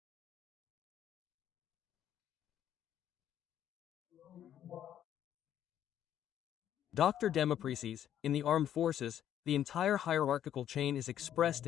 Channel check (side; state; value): right; quieter; 10.5 dB